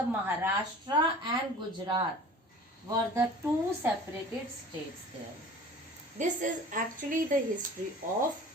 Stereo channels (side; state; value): both; normal; correlation 0.43